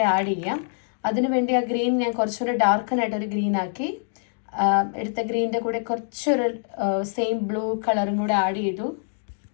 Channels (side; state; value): right; silent; digital silence